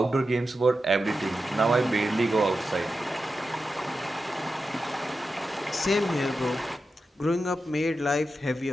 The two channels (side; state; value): both; normal; correlation 0.90